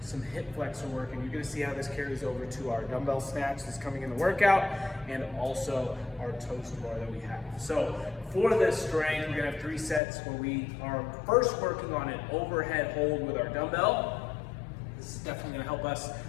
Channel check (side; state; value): right; drops out; at 10.0 s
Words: hip flexor work. And you're going to see how this carries over to our dumbbell snatch that's coming in the workout, and also our toast bar that we have. So for this strength, we're going to have 3 sets where we are first working on an overhead hold with our dumbbell. This is definitely going to help us